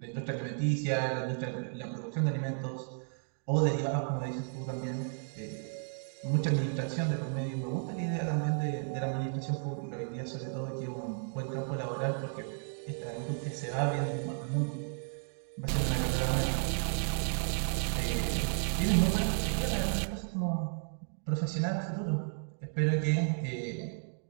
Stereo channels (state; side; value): silent; left; 55 dB below the other